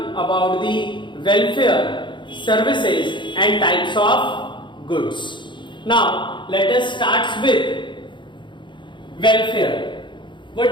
about the welfare, services and types of goods. Now let us start with welfare.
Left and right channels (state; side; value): late; right; 0.23 ms